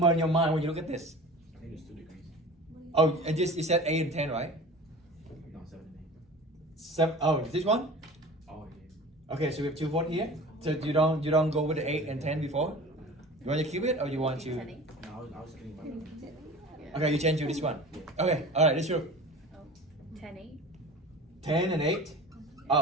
in your mind when you look at this? I think it's 2 degrees. Oh, and just you said 8 and 10, right? No, 7 and 7. Oh, this one? 8. Oh, yeah. Okay, so we have 2 votes here. So you don't go with the 8 and 10 before? You want to keep it or you want to? No, I was kidding about that. Okay, you change to this one. Okay, all right, this group. 10, 8. 10 and 8.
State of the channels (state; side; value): normal; both; correlation 0.38